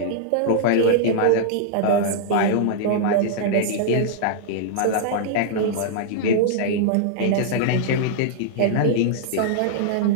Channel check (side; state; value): both; different; correlation -0.01